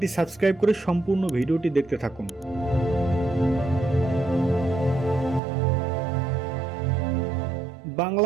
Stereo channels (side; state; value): left; drops out; at 5.4 s